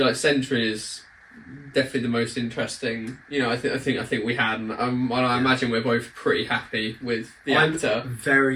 like Sentry is definitely the most interesting. You know, I think we had, and I imagine we're both pretty happy with the actor.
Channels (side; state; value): both; identical; correlation 1.00